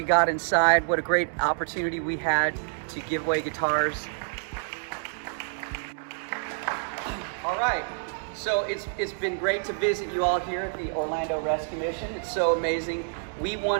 got inside. What a great opportunity we had to give away guitars. All right, so it's been great to visit you all here at the Orlando Rescue Mission. It's so amazing. We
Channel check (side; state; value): left; silent; digital silence